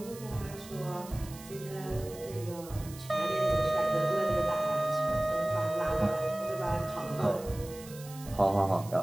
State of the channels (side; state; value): right; noise; hiss, 17 dB below the sound